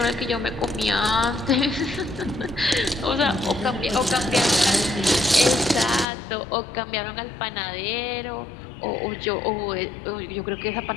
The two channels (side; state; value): right; drops out; at 6.1 s